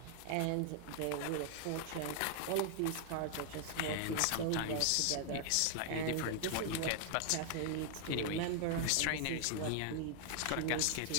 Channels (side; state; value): both; different; correlation 0.00